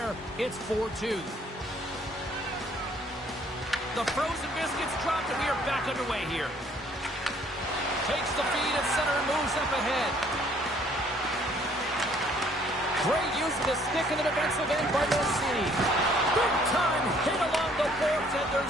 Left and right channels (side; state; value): both; normal; correlation 0.61